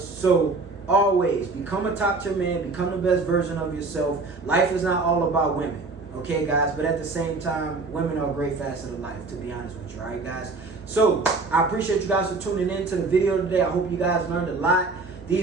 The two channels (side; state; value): left; quieter; 3.7 dB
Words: So always become a top tier man, become the best version of yourself. Life is not all about women, Okay, guys, but at the same time, women are a great facet of life, to be honest with you, all right, guys? So, I appreciate you guys for tuning in to the video today. I hope you guys learned a lot.